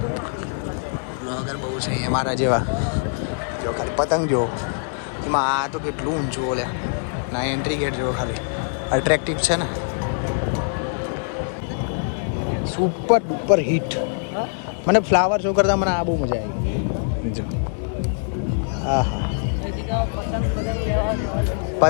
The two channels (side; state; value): right; silent; digital silence